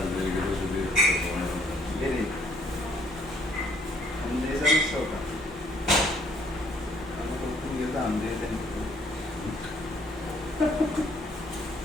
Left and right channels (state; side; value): normal; both; correlation 0.64